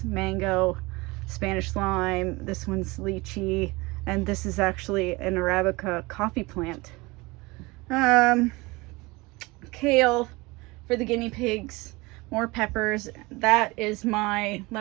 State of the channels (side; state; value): left; quieter; 23.6 dB